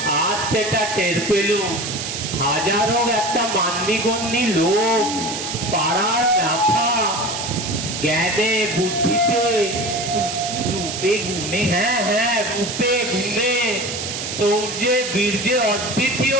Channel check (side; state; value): right; noise; hiss, 5 dB below the sound